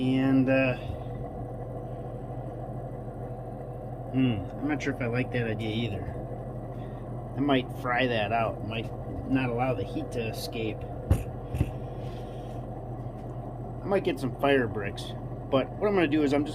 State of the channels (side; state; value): both; identical; correlation 1.00